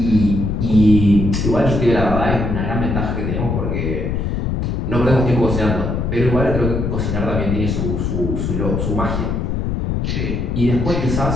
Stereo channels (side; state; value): left; noise; rumble, 1 dB below the sound